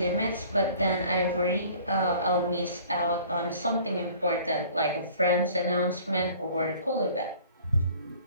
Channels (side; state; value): both; inverted; correlation -0.51